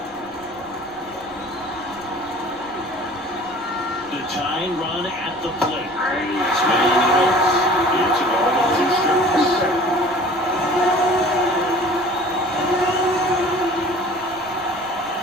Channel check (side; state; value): left; noise; rumble, 28 dB below the sound